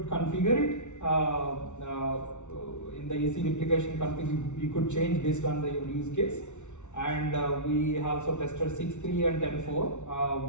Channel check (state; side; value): late; right; 0.83 ms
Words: configure it in the EC replication config. You could change based on the use case. And we also tested 6.3 and